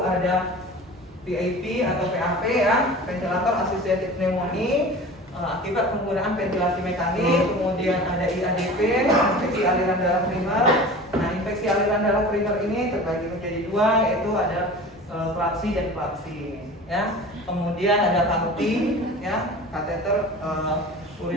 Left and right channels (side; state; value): both; normal; correlation 0.38